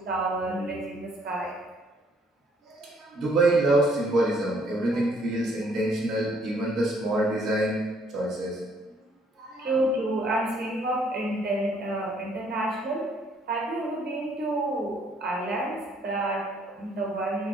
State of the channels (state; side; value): normal; both; correlation 0.65